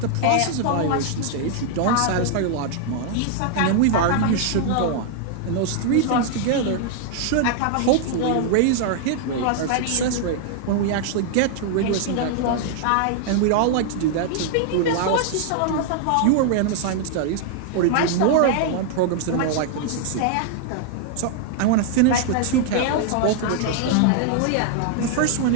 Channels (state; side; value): different; both; correlation 0.00